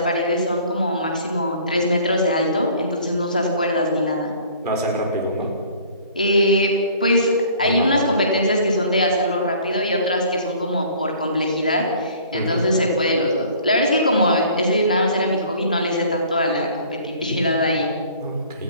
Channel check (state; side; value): inverted; both; correlation -0.51